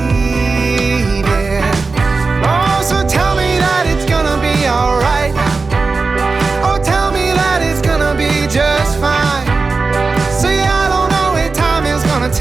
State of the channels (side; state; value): left; quieter; 4.1 dB